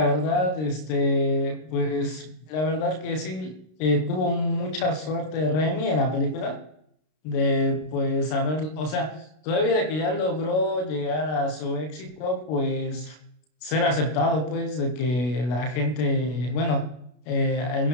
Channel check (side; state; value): right; late; 32 ms